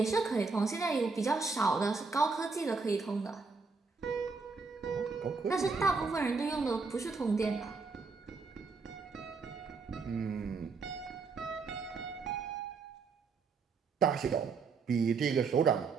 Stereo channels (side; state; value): left; quieter; 4.6 dB